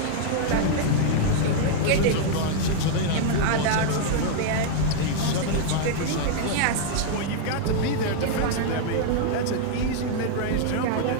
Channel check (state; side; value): different; both; correlation -0.01